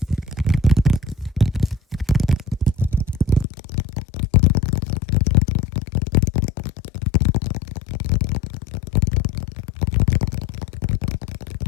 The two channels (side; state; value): right; drops out; at 3.5 s